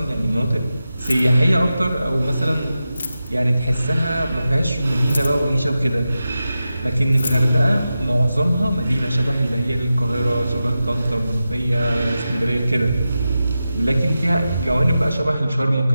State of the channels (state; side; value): inverted; both; correlation -0.92